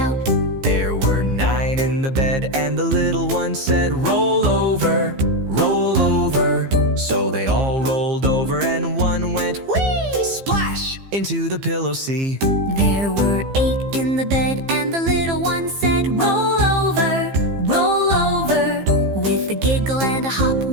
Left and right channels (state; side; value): late; left; 15 ms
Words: There were 9 in the bed, and the little one said, "Roll over, roll over." So they all rolled over, and one went whee! Splash! Into the pillow sea. There were 8 in the bed, and the little one said, "Roll over, roll over." With a giggle and a hop,